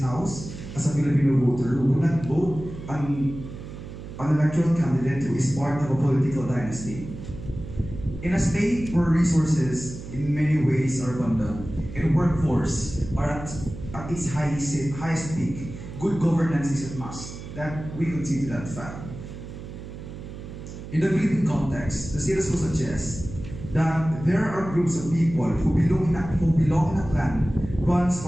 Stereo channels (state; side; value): noise; right; hum, 11 dB below the sound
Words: as a Filipino voter, would not vote an electoral candidate who is part of a political dynasty. In a state where resources in many ways are abundant and workforce are at its highest peak, good governance is a must. That we concede to that fact. In the Philippine context, the status quo suggests that there are groups of people who belong in a clan runs